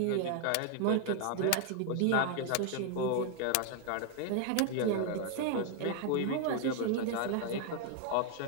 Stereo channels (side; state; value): both; different; correlation 0.00